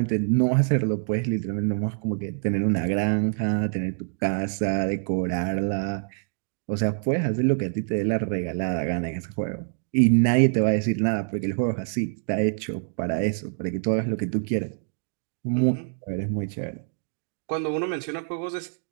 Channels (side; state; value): left; silent; digital silence